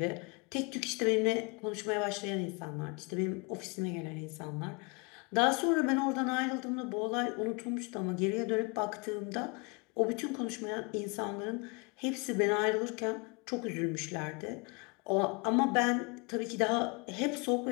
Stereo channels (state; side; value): quieter; right; 31.1 dB